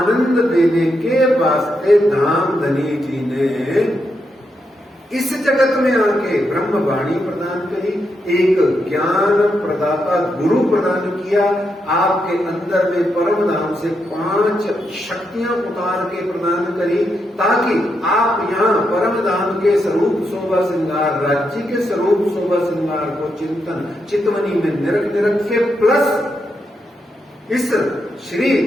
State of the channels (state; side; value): normal; both; correlation 0.82